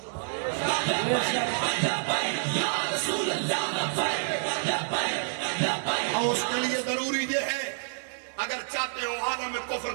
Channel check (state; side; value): silent; left; digital silence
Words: اور اس کے لیے ضروری یہ ہے اگر چاہتے ہو عالم کفر